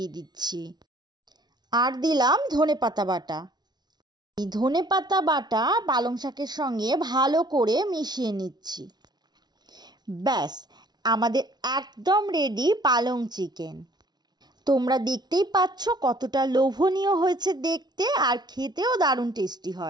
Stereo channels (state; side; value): late; left; 0.20 ms